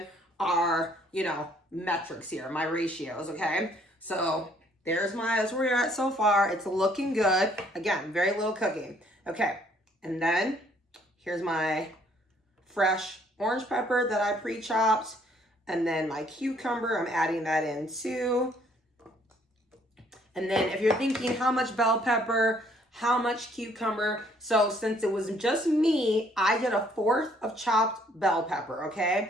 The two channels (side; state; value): both; normal; correlation 0.64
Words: our, you know, metrics here, my ratios, okay? So that's where we're at so far. It's looking good. Again, very little cooking. Okay, and then here's my fresh orange pepper that I pre-chopped. And then my cucumber, I'm adding that in too. And then if you're thinking how much bell pepper, how much cucumber, so since it was just me, I did 1/4 of chopped bell pepper,